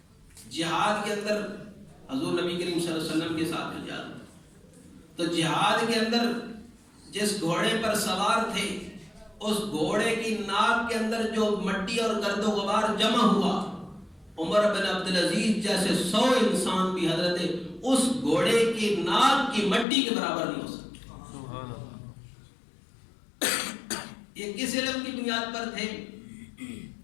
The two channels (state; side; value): drops out; right; at 19.9 s